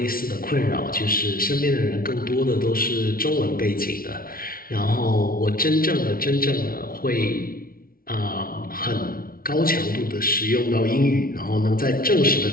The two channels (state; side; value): late; right; 0.43 ms